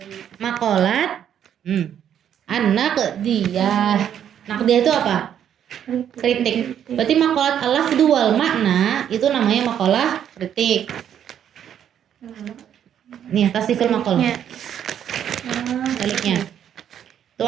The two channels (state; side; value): quieter; left; 9.5 dB